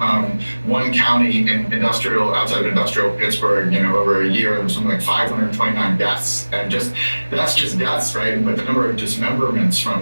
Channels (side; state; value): both; inverted; correlation -1.00